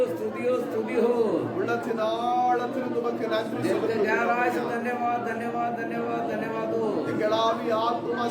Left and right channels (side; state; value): both; identical; correlation 1.00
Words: स्तुति हो, स्तुति हो. உள்ளத்தின் ஆழத்திலிருந்து உமக்கு நன்றி दिल के गहराई से செலுத்துகிறோம். धन्यवाद धन्यवाद धन्यवाद धन्यवाद हो. எங்கள் ஆவி ஆத்மா